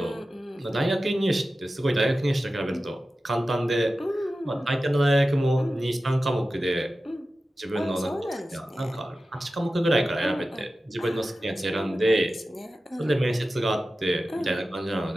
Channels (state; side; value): normal; both; correlation 0.94